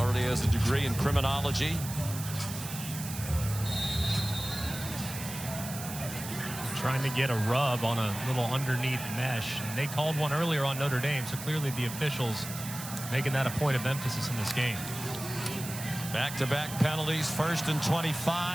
has a degree in criminology. Trying to get a rub on a little underneath mesh. And they called one earlier on Notre Dame, so clearly the officials making that a point of emphasis in this game. Back-to-back penalties, 1st and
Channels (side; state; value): right; noise; hiss, 10 dB below the sound